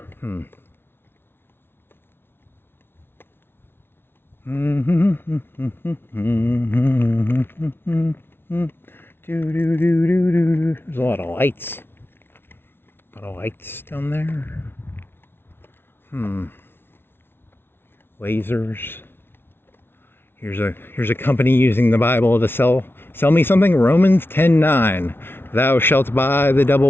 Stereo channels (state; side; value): late; right; 0.11 ms